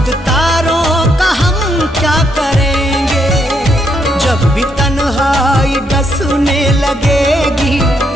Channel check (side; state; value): both; normal; correlation 0.75